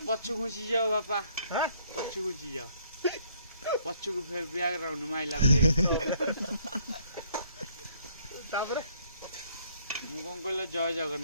ପଛୁ ଘୁଞ୍ଚି ଯାଅ ବାପା ହାଁ ପଛୁ ଘୁଞ୍ଚି ଯାଅ ପଛକୁ ବ୍ୟାକଗ୍ରାଉଣ୍ଡ ମାଇଲା ତାପରେ ମୁଁ କଣ କହିଲ ଜୟ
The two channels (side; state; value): both; inverted; correlation -0.65